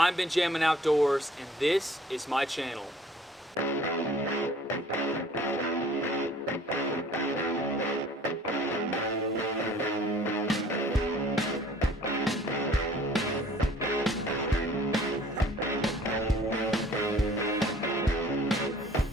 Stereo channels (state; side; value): normal; both; correlation 0.53